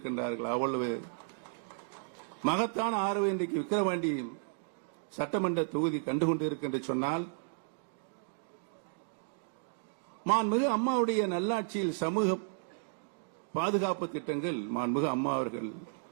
அவ்வளவு மகத்தான ஆர்வம் இன்றைக்கு விக்கிரவாண்டி சட்டமன்ற தொகுதி கண்டுகொண்டிருக்கின்ற சொன்னால், மாண்புமிகு அம்மாவுடைய நல்லாட்சியில் சமூக பாதுகாப்பு திட்டங்கள் மாண்புமிகு அம்மா அவர்கள்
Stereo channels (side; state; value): left; silent; digital silence